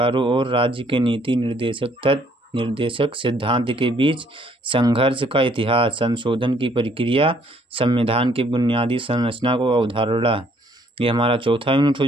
और राज्य के नीति निर्देशक सिद्धांत के बीच संघर्ष का इतिहास, संशोधन की प्रक्रिया, संविधान की बुनियादी संरचना को अवधारणा, ये हमारा चौथा यूनिट हो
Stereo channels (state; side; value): normal; both; correlation 0.64